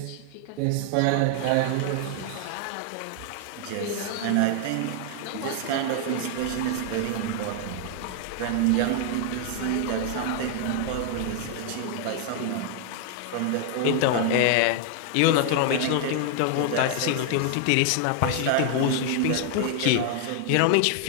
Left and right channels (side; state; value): both; different; correlation 0.00